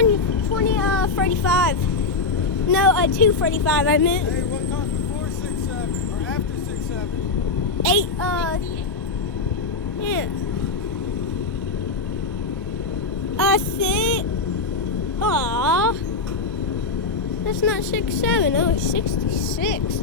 35. No, 245, I meant. Hey, what comes before 6'7" or after 6'7"? 8, yeah. 6. Aw. That's not 6'7". Oh, it's 66,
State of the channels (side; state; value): right; quieter; 4.0 dB